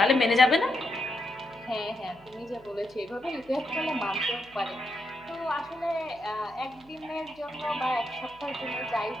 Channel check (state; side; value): noise; right; hum, 26 dB below the sound